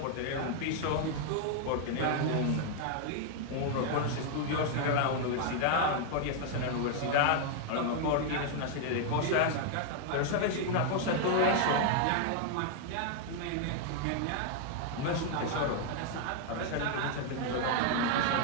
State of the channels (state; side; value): different; both; correlation 0.00